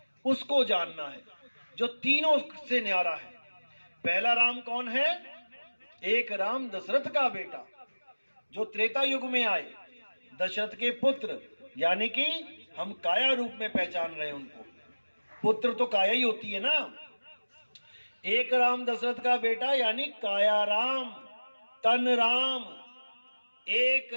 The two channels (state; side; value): inverted; both; correlation -1.00